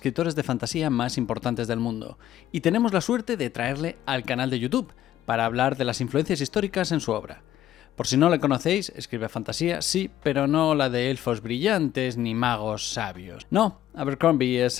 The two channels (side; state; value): right; quieter; 12.5 dB